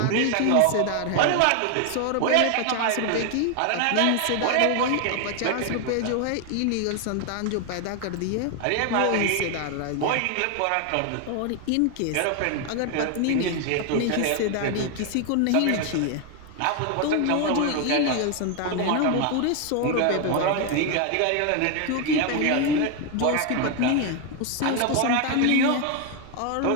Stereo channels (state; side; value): different; both; correlation 0.01